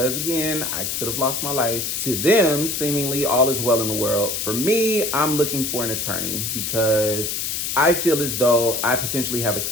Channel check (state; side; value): noise; left; hiss, 2 dB below the sound